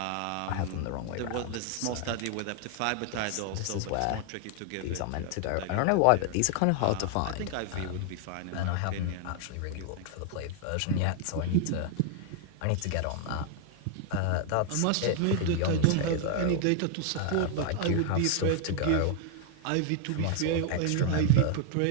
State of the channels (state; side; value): different; both; correlation 0.00